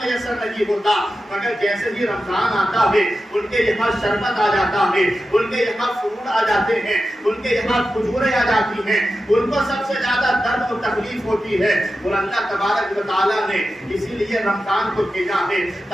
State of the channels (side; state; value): both; normal; correlation 0.92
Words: میسر نہیں ہوتا، مگر جیسے ہی رمضان آتا ہے ان کے یہاں شربت آ جاتا ہے، ان کے یہاں فروٹ آ جاتے ہیں، ان کے یہاں کھجوریں آ جاتی ہیں، ان کو سب سے زیادہ درد و تکلیف ہوتی ہے۔ اور اللہ تبارک و تعالیٰ نے اسی لیے رمضان کو بھیجا ہے